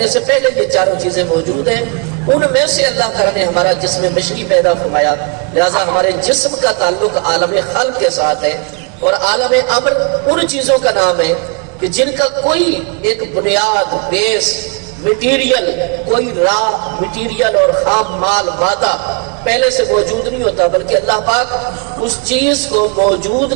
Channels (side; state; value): left; quieter; 33.3 dB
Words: سے پہلے یہ چاروں چیزیں موجود ہیں. ان میں سے اللہ تعالیٰ نے ہمارا جسم بشری پیدا فرمایا. لہذا ہمارے جسم کا تعلق عالم خلق کے ساتھ ہے، اور عالم امر ان چیزوں کا نام ہے کہ جن کا کوئی ایک بنیاد، بیس، مٹیریل، کوئی را مٹیریل اور خام مال، مادہ پہلے سے موجود نہیں ہوتا، بلکہ اللہ پاک اس چیز کو موجود